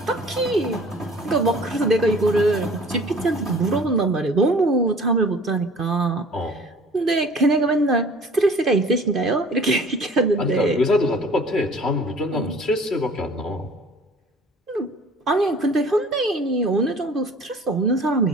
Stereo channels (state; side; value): normal; both; correlation 0.49